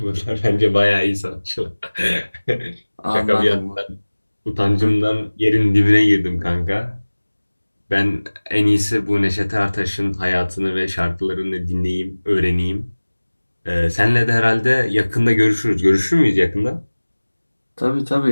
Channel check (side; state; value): both; inverted; correlation -1.00